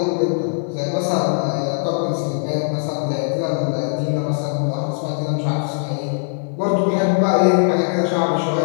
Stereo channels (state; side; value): silent; right; digital silence